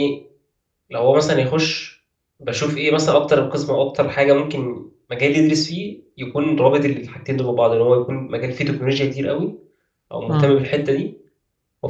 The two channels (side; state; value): both; identical; correlation 1.00